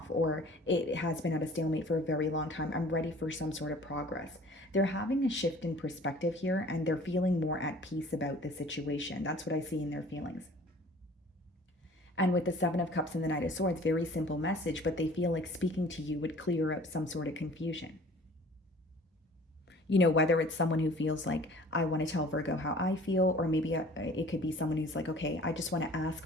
or it has been at a stalemate for a very long time. I'm ready for some sort of progress. They're having a shift in perspective here, and they're feeling more at peace about the situation. That's what I see in their feelings. And with the Seven of Cups and the Knight of Swords, very simple message, but they feel like speaking to you would clear up some sort of confusion. Whether it's someone who feels like, I want to tell Virgo how I feel, or maybe it could be someone who's like, okay, I just want to ask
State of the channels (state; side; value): normal; both; correlation 0.49